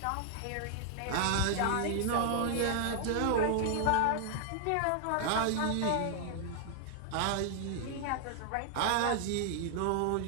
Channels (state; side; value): different; both; correlation 0.00